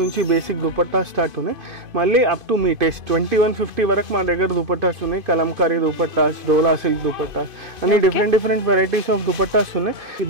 నుంచి బేసిక్ దుపట్టా స్టార్ట్ ఉన్నాయి. మళ్ళీ అప్ టు మీ టేస్ట్ 2150 వరకు మా దగ్గర దుపట్టాస్ ఉన్నాయి. కలంకారీ దుపట్టాస్, డోలా సిల్క్ దుపట్టాస్ అన్ని డిఫరెంట్ వెరైటీస్ ఆఫ్ దుపట్టాస్ ఉన్నాయి.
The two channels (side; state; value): left; late; 2.5 ms